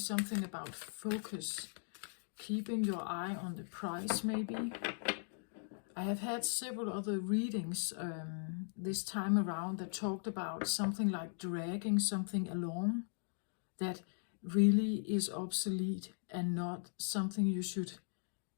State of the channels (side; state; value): right; silent; digital silence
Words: about focus, keeping your eye on the prize, maybe. I have had several other readings this time around that talked about something like dragging something along that really is obsolete and not something you should